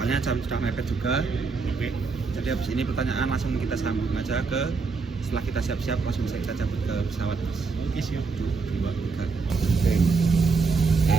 jam sudah mepet juga. Oke. Jadi habis ini pertanyaan langsung kita sambung aja ke, setelah kita siap-siap langsung saja cabut ke pesawat mas. Oke, siap. 1, 2, 3. Oke.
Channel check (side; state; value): left; quieter; 4.6 dB